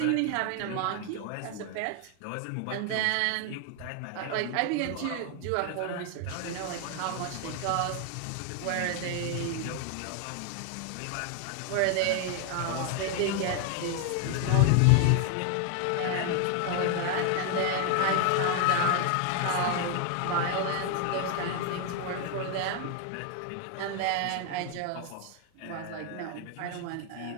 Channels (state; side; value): different; both; correlation 0.00